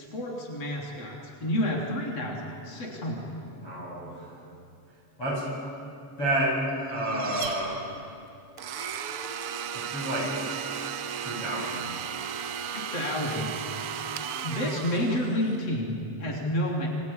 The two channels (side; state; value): right; late; 7.0 ms